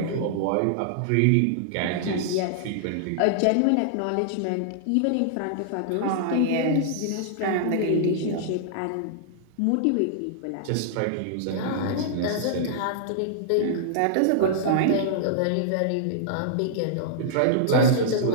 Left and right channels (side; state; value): both; different; correlation -0.01